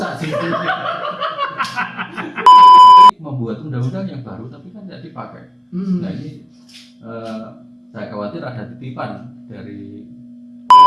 sih. Membuat undang-undang yang baru tapi kan tidak dipakai. Nah ini saya khawatir ada titipan dari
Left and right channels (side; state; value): both; identical; correlation 1.00